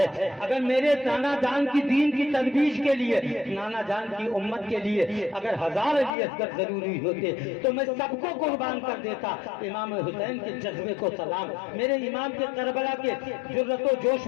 اگر میرے نانا جان کی دین کی ترویج کے لیے، نانا جان کی امت کے لیے اگر 1000 علی اصغر ضروری ہوتے تو میں سب کو قربان کر دیتا۔ امام حسین کے جذبے کو سلام، میرے امام کے کربلا کے جرأت و جوش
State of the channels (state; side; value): drops out; right; at 6.2 s